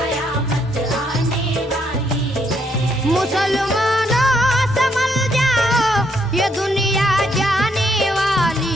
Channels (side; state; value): both; normal; correlation 0.73